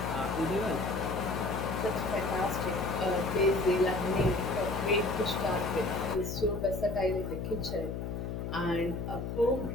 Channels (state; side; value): noise; left; hum, 4 dB below the sound